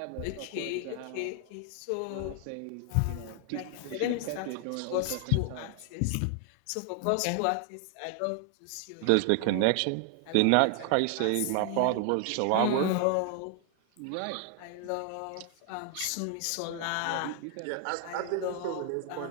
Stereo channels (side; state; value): both; different; correlation 0.00